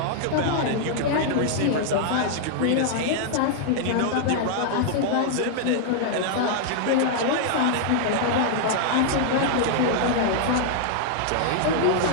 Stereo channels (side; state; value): both; different; correlation -0.01